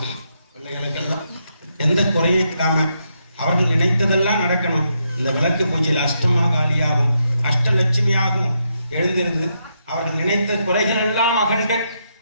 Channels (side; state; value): both; inverted; correlation -0.80